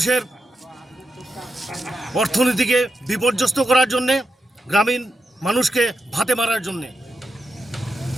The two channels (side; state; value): both; normal; correlation 0.87